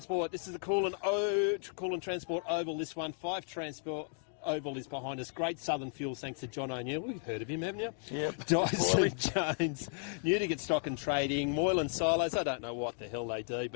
This is the Coolin Transport Oval. This one, 5 Transport Oval is behind us. Great Southern Fuels, thanks to John O'Neill. We've heard of him, haven't you? Yep. Dyson Jones, Newdigate Stock and Trading, Moylan Silos. I don't know what the hell they do,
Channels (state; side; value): silent; right; 55 dB below the other